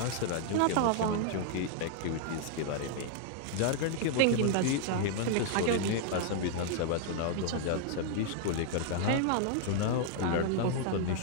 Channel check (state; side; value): different; both; correlation 0.00